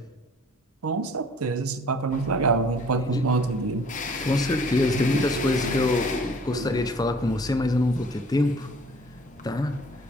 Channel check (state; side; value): normal; both; correlation 0.54